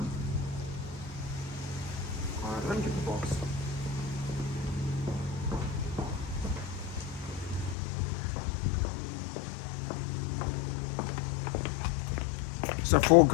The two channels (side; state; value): right; drops out; at 7.8 s